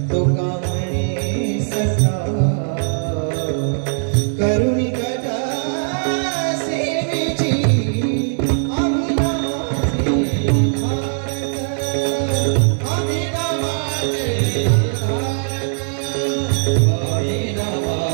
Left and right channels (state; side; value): silent; left; digital silence